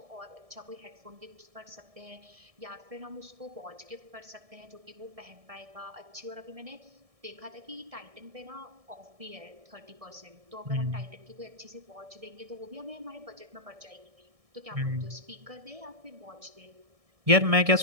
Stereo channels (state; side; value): late; left; 1.7 ms